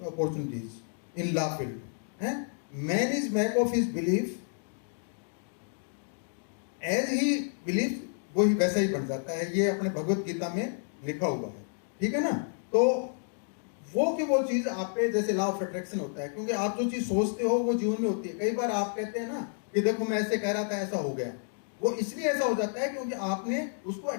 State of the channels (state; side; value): silent; right; digital silence